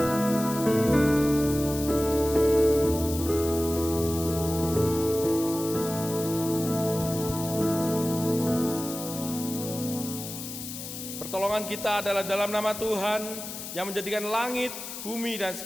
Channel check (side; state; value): left; noise; hiss, 9 dB below the sound